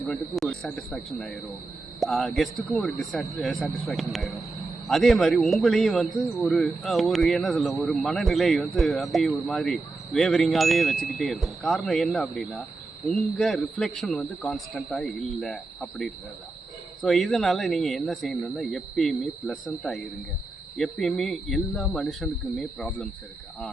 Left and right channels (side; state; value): left; quieter; 3.4 dB